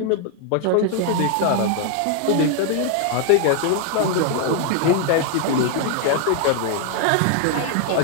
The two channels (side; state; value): both; different; correlation 0.00